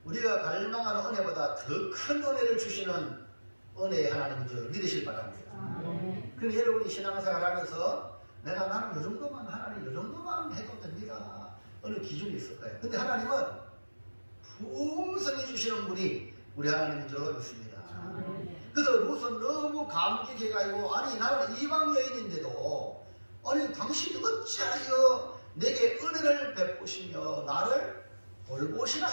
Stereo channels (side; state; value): both; inverted; correlation -1.00